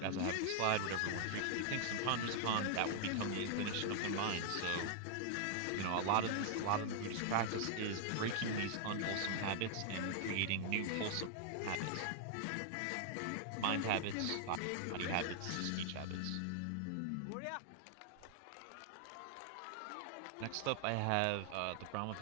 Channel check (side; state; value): both; different; correlation 0.00